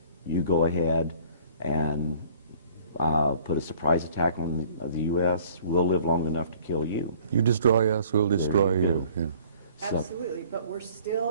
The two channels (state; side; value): inverted; both; correlation -0.54